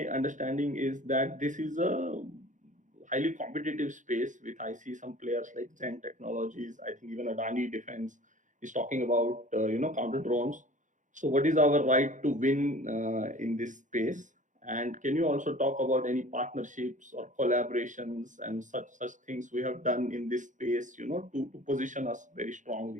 understanding is that this is a highly competitive space with, I see some players like Zen Technologies. I think even Adani Defense is talking about counter drones. So what is our right to win in this space? And can you also talk about any partnerships or collaborations and such things we have done in this space, to position us very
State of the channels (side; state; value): left; late; 0.36 ms